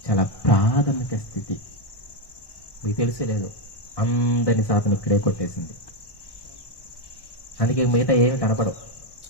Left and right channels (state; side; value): late; right; 1.1 ms